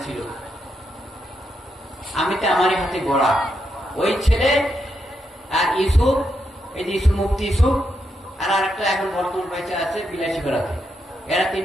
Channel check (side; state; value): both; normal; correlation 0.82